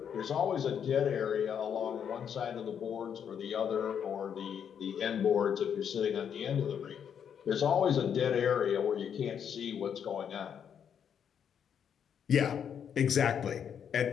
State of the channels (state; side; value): quieter; right; 8.1 dB